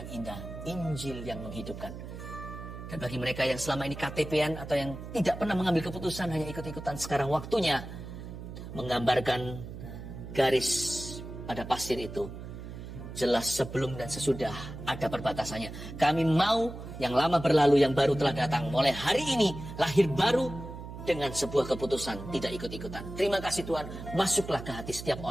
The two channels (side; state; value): right; noise; hum, 11 dB below the sound